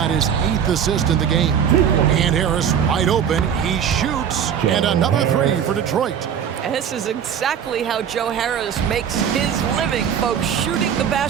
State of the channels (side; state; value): left; quieter; 8.3 dB